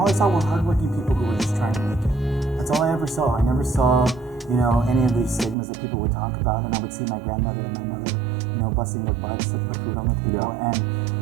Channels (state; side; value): drops out; left; at 5.6 s